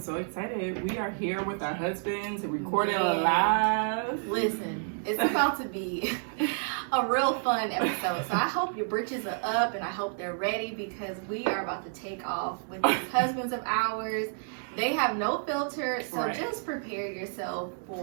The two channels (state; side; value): silent; left; 58 dB below the other